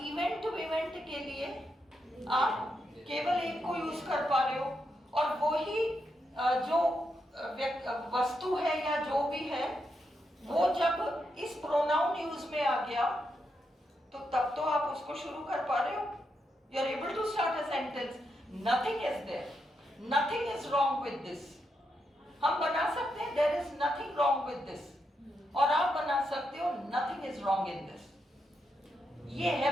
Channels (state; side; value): normal; both; correlation 0.83